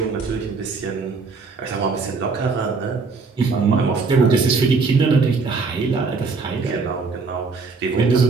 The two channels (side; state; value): left; quieter; 4.4 dB